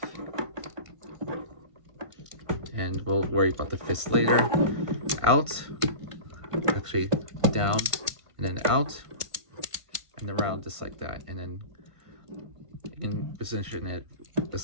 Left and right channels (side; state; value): left; late; 1.5 ms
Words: and we'll worry about the fist later. Out, actually down, and then out, and around just like that, and then you can position it